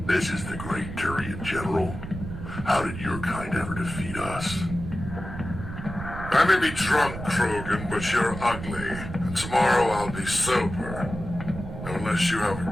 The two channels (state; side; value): noise; right; rumble, 9 dB below the sound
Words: This is the Great Turian, General. How did your kind ever defeat us? I may be drunk, Krogan, but you're ugly, and tomorrow I'll be sober. Unless you have a